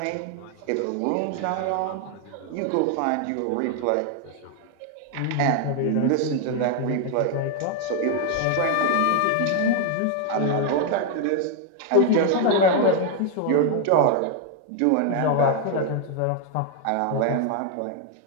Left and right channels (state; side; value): different; both; correlation 0.00